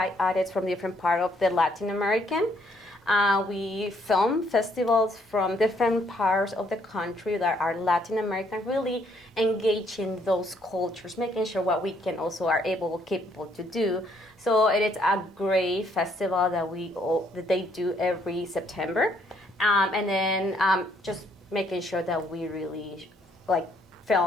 artists from different part of the Latin American. We film festivals from different parts of the country that are Latin American, really engaging those cultures, making sure what we can also are capable to do. So it is a great festival that they do every September, and then just making sure that we really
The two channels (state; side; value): normal; both; correlation 0.68